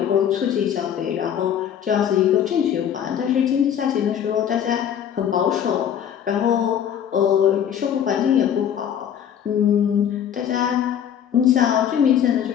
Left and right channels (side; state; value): right; quieter; 9.2 dB